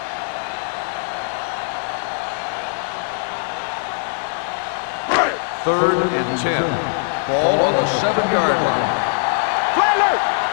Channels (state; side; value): silent; right; digital silence